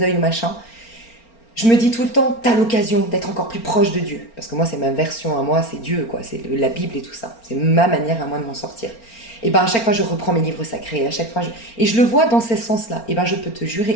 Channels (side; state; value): right; late; 4.4 ms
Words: œil ou machin, je me dis tout le temps, t'as l'occasion d'être encore plus proche de Dieu. Parce que moi, c'est ma version à moi, c'est Dieu, quoi. C'est la Bible et tout ça. C'est ma manière à moi de m'en sortir. Et à chaque fois, je reprends mes livres sacrés. À chaque fois, et je le vois dans ce sens-là. Et je peux te